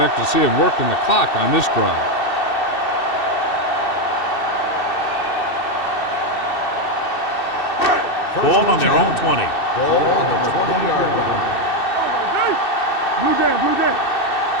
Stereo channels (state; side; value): late; right; 2.6 ms